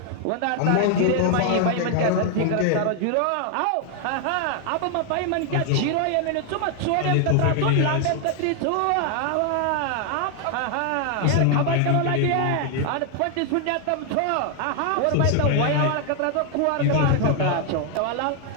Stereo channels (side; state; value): both; different; correlation 0.00